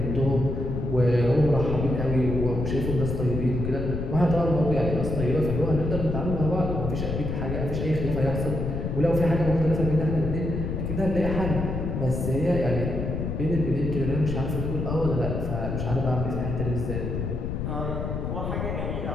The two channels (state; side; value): noise; left; rumble, 2 dB below the sound